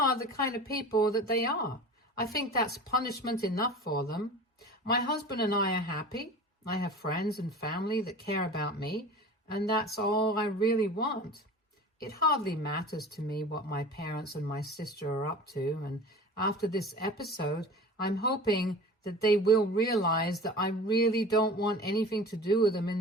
the kind of people that they are. I think that's punishment enough for them. My husband and I are happy. I have friends and family that care about me, and that's all I really want. It hardly matters to me what my parents and my sister are up to, and after this episode, I'm hoping that they will realize that I really don't want anything to do with them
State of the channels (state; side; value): normal; both; correlation 0.37